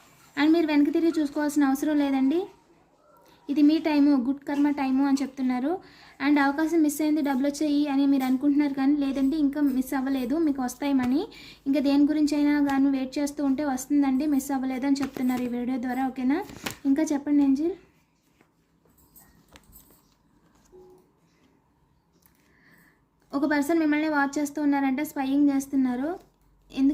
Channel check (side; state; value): both; identical; correlation 1.00